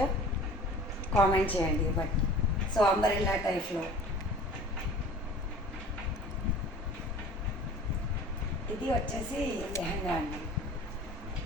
కామెంట్ చేయండి. బట్ సో అంబరెల్లా టైప్లో ఇది వచ్చేసి లెహంగా అండి.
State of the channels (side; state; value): both; normal; correlation 0.44